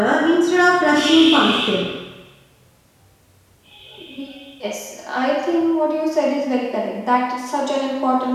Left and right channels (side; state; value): both; identical; correlation 1.00